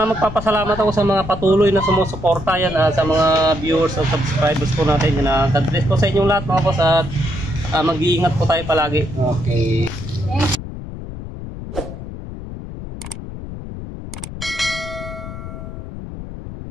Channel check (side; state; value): left; noise; rumble, 10 dB below the sound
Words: ako sa mga patuloy na sumusuporta yan, sa mga viewers at subscribers po natin. Yan, God bless po sa inyong lahat mga boss at mag-iingat po tayo palagi. Okay.